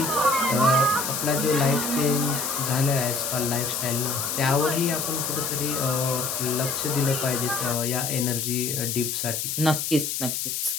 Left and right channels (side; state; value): left; noise; hiss, 2 dB below the sound